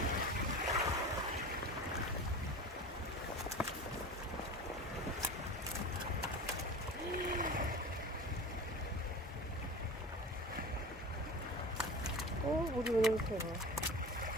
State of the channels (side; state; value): both; normal; correlation 0.33